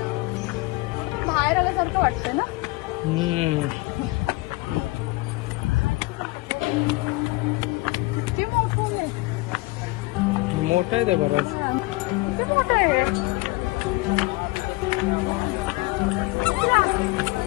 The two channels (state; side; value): quieter; right; 22.8 dB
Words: बाहेर आल्यासारखं वाटतंय ना. मोठा आहे ते बराच. मोठं आहे.